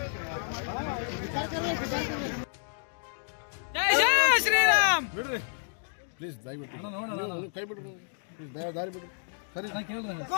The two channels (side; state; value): right; silent; digital silence